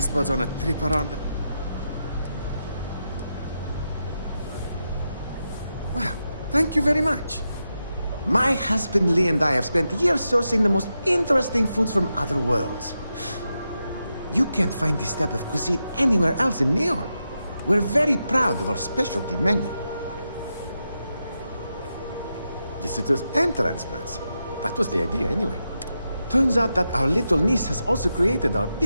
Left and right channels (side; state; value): both; inverted; correlation -0.87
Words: buds on a trip around the... Wow, thank you very much. My husband Lee and I have spent years sourcing the most interesting foods from other worlds. You can't find this type of cuisine anywhere else in Neon. We're very proud of our specialty menu. Visitors and transplants. That was the idea anyway. Turns out that our little niece has also created our